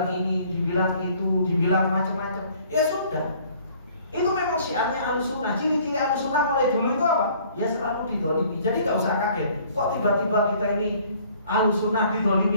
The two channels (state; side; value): inverted; both; correlation -0.56